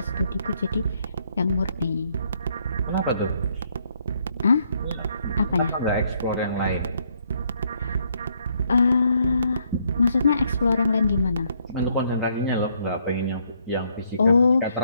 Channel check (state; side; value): inverted; both; correlation -0.71